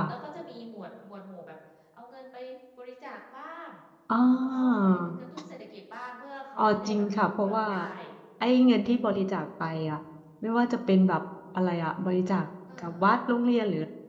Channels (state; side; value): identical; both; correlation 1.00